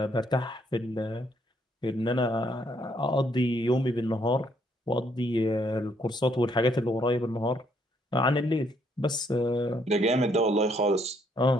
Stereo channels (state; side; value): normal; both; correlation 0.70